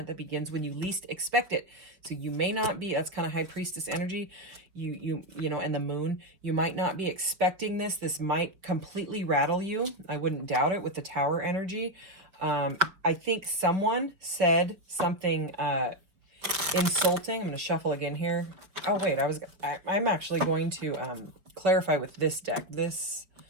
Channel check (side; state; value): left; late; 5.2 ms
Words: that begins when you least expect it. So you may not be, that's kind of high priestess energy, you know, and the moon, you might not be expecting this. This might completely rattle you. I wouldn't doubt it with the tower energy. I think someone said something insulting. I'm going to shuffle again here. Oh wait, I'm actually going to clarify with this deck. This